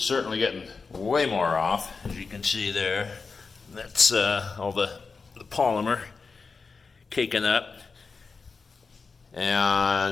certainly getting way more off. As you can see there, that's all the polymer caking up.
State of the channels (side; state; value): right; quieter; 4.7 dB